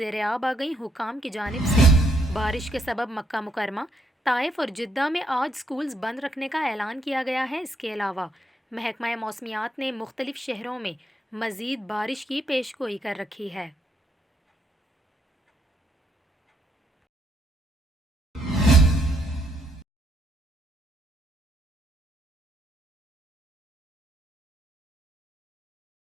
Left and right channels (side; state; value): both; normal; correlation 0.74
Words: आ गईं। हुकाम की जानिब से बारिश के सबब मक्का मुकरमा, ताइफ और जिद्दा में आज स्कूल्स बंद रखने का ऐलान किया गया है। इसके अलावा महकमा मौसमियात ने मुख्तलिफ शहरों में मज़ीद बारिश की पेशगोई कर रखी है।